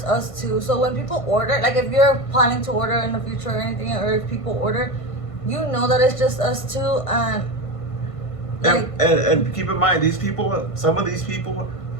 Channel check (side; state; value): right; late; 1.5 ms